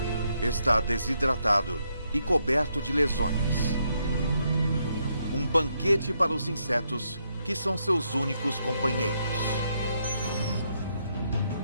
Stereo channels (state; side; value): inverted; both; correlation -0.77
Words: Está desidratado e coberto de lesões. Um banquete para os insetos, que são seus únicos companheiros.